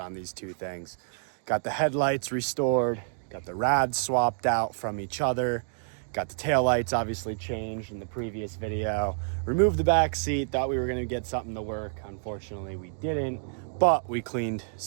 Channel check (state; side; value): silent; left; digital silence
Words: these two things. Got the headlights restored, got the rads swapped out from each other, got the taillights obviously changed in the previous video, removed the back seat, thought we were gonna get something to work. Unfortunately, we didn't, but we cleaned